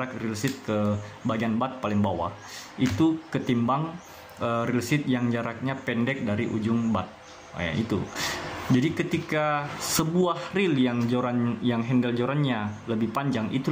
reel seat ke bagian bat paling bawah, itu ketimbang reel seat yang jaraknya pendek dari ujung bat. Itu. Jadi ketika sebuah reel yang handle jorannya lebih panjang, itu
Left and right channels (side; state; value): both; identical; correlation 1.00